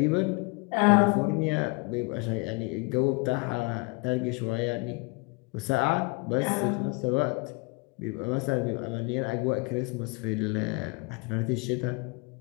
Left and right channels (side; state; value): right; quieter; 28.7 dB